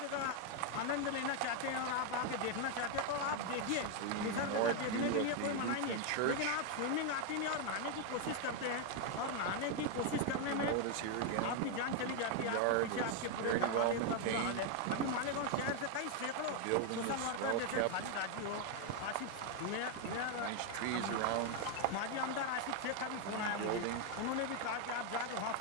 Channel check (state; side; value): different; both; correlation 0.01